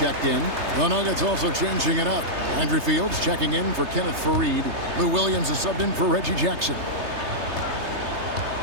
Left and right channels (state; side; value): late; left; 3.3 ms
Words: in. The Nuggets also changing it up. Andrew Fields checking in for Kenneth Faried. Lou Williams is subbed in for Reggie Jackson.